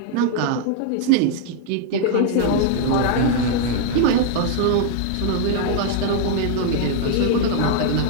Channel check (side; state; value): both; different; correlation -0.01